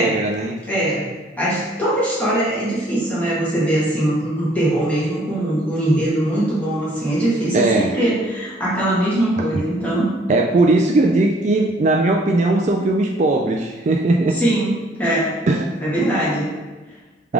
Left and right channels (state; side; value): normal; both; correlation 0.60